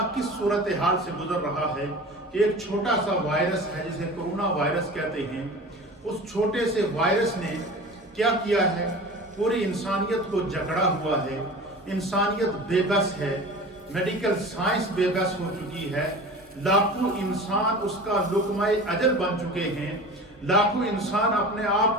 کس صورتحال سے گزر رہا ہے کہ ایک چھوٹا سا وائرس ہے جسے کرونا وائرس کہتے ہیں، اس چھوٹے سے وائرس نے کیا کیا ہے؟ پوری انسانیت کو جکڑا ہوا ہے، انسانیت بے بس ہے، میڈیکل سائنس بے بس ہو چکی ہے، لاکھوں انسان اس کا لقمہ اجل بن چکے ہیں، لاکھوں انسان اپنے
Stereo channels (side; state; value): both; normal; correlation 0.36